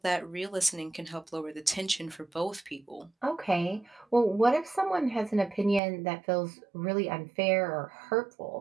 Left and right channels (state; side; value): drops out; left; at 5.8 s